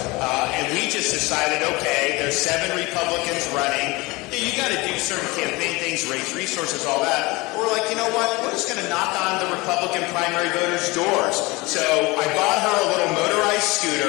And we just decided, okay, there's 7 Republicans running. You got to do certain campaign things, raise resources, all that. We're like, you know what? We're just going to knock on the Republican primary voters' doors. So I bought her a little motorized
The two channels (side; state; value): right; quieter; 23.3 dB